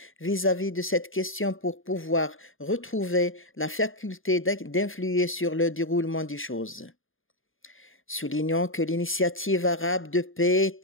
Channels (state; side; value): late; right; 0.59 ms